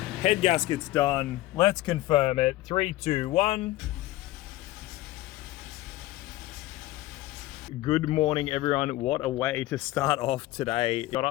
Head gasket's done. Let's confirm it. 3, 2, 1. Good morning, everyone. What a way to start off today. Got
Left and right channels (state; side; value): quieter; right; 16.9 dB